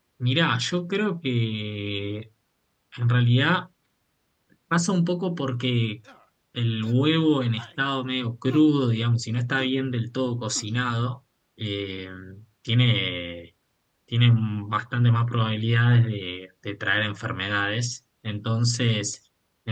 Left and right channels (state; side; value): identical; both; correlation 1.00